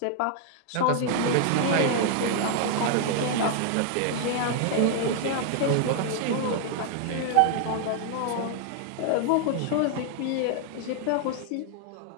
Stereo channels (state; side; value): different; both; correlation 0.00